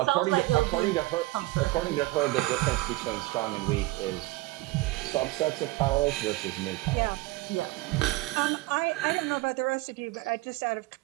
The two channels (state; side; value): quieter; left; 19.5 dB